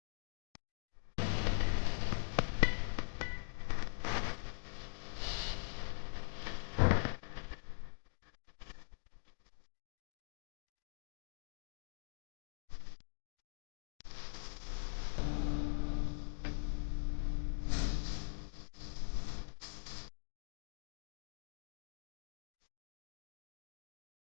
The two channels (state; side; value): silent; right; digital silence